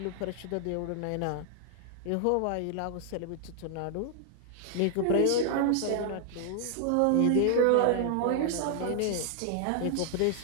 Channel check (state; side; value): different; both; correlation 0.00